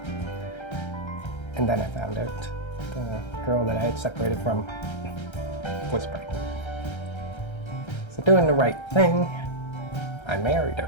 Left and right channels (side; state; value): right; late; 1.3 ms